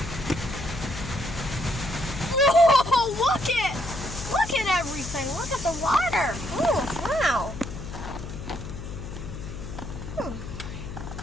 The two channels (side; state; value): left; noise; hum, 9 dB below the sound